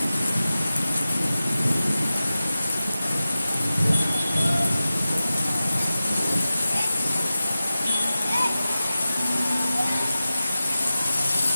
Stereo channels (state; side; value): inverted; both; correlation -0.95